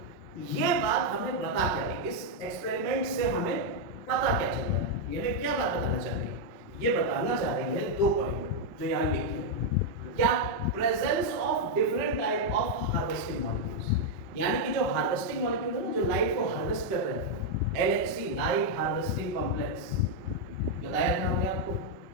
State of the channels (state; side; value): late; left; 5.2 ms